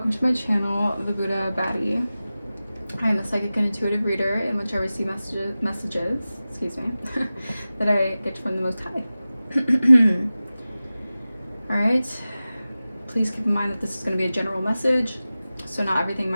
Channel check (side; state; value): both; inverted; correlation -0.96